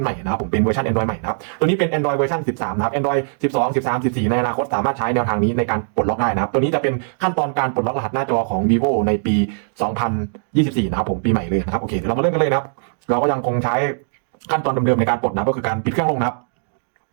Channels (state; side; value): silent; left; digital silence